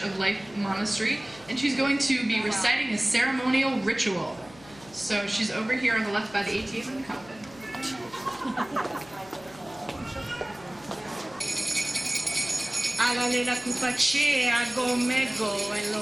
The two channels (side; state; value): left; noise; hum, 22 dB below the sound